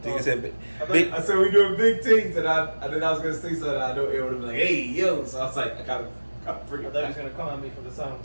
I said we're doing big things, and then I was gonna say something. I know it would have been like, "Hey, yo!" So I was like, I gotta bring it. I thought he was gonna come at me for the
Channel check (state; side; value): inverted; both; correlation -1.00